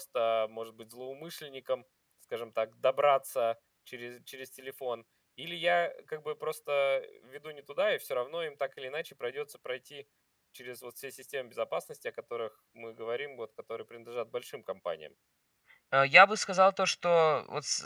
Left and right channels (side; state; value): both; identical; correlation 1.00